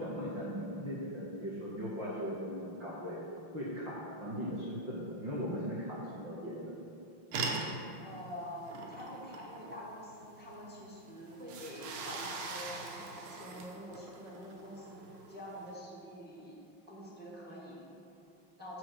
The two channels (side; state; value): left; late; 5.7 ms